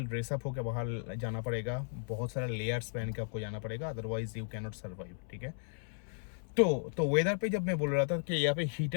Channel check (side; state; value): right; silent; 54 dB below the other